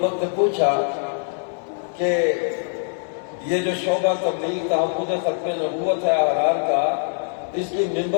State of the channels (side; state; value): right; silent; digital silence